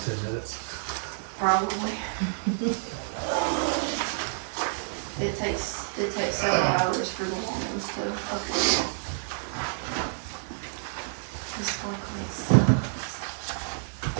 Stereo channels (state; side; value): silent; left; digital silence